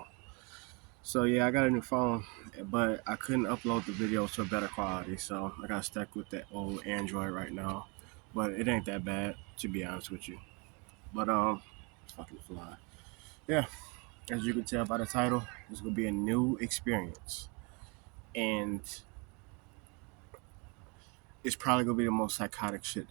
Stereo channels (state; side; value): quieter; left; 31.4 dB